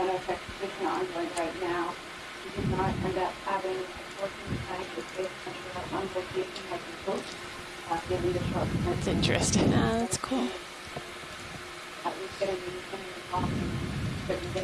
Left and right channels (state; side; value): identical; both; correlation 1.00